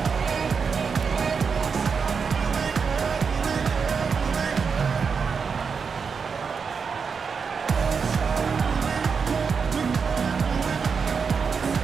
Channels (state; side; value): quieter; left; 5.7 dB